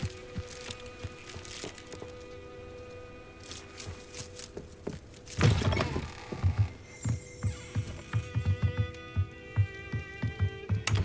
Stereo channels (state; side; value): identical; both; correlation 1.00